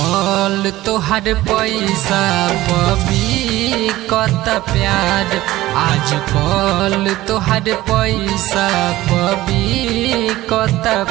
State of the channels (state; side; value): quieter; left; 16.5 dB